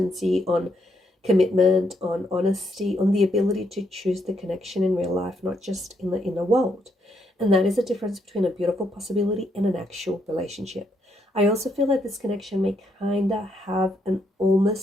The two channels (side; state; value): both; normal; correlation 0.76